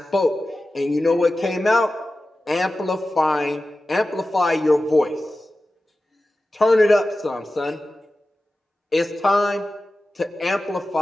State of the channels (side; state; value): both; normal; correlation 0.94